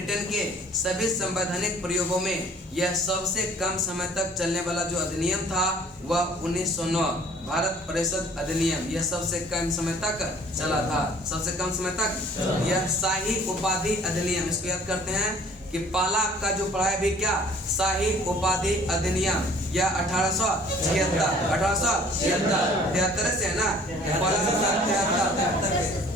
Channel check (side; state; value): both; normal; correlation 0.53